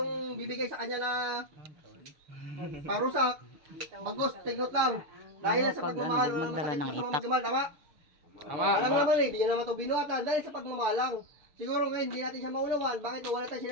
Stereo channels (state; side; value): late; left; 6.7 ms